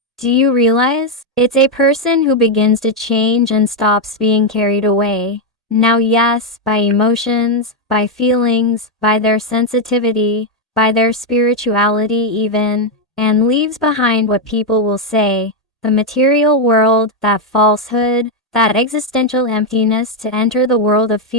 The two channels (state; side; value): normal; both; correlation 0.02